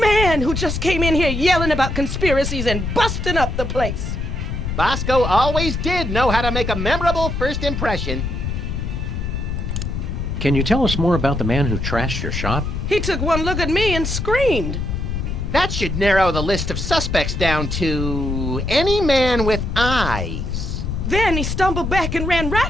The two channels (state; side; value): noise; left; rumble, 3 dB below the sound